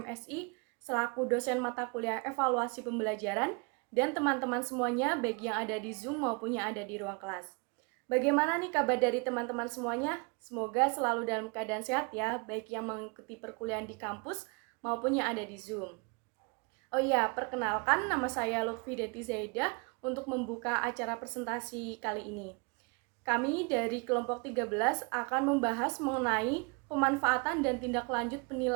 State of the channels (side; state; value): left; quieter; 32.0 dB